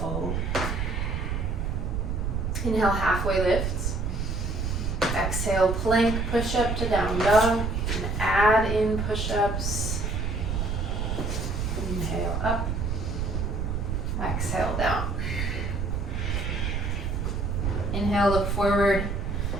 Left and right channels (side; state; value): right; noise; rumble, 1 dB below the sound